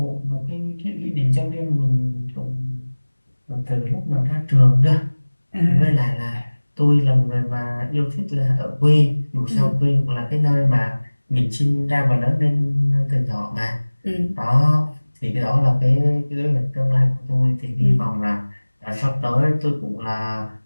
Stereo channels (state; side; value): inverted; both; correlation -1.00